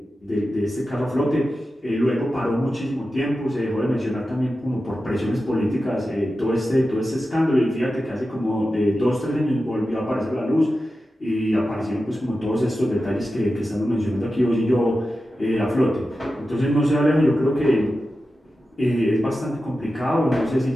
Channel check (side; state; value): both; normal; correlation 0.92